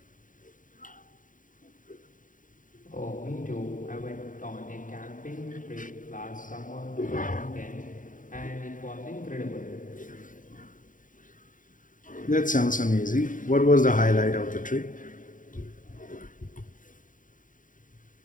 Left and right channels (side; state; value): right; late; 0.38 ms